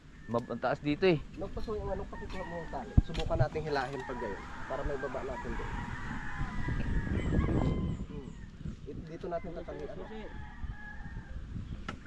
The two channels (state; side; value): identical; both; correlation 1.00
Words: mataas dito eh. Nagpaso yung anong pakikuha mo ang tali. Subukan natin hilahin pag gayon. Para may baba natin doon. dito natin tatanggihan.